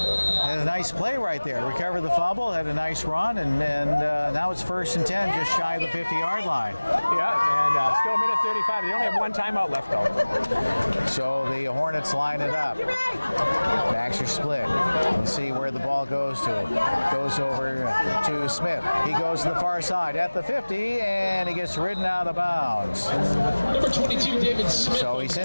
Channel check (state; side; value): inverted; both; correlation -1.00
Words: Had a nice play right there. Recovered the fumble, had a nice run, and now it's 1st and 10, just shy of the 50-yard line. Yeah, and still 1:35. They only have one timeout left, though. So the Hornets line it up. Backs are split. Let's see where the ball goes to. Goes over to Smith. He goes to the far side at the 50, and he gets ridden out of bounds. Number 22, David Smith. So he's